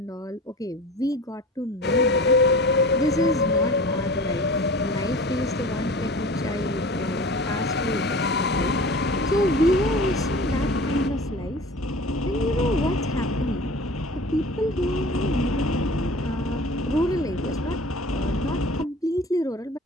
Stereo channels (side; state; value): both; normal; correlation 0.39